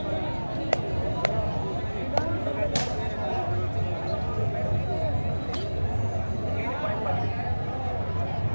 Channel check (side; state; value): both; inverted; correlation -1.00